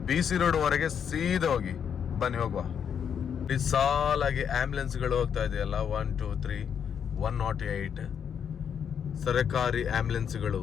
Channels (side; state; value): right; quieter; 7.8 dB